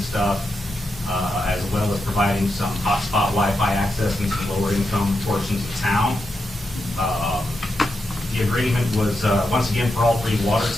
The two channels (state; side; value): normal; both; correlation 0.86